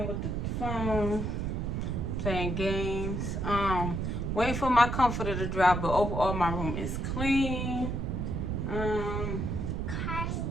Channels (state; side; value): noise; right; rumble, 1 dB below the sound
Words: with the phone, playing games. Waiting for my comforter to dry, but overall my room is clean.